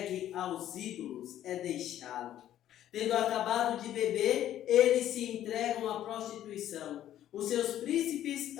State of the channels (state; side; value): quieter; right; 11.9 dB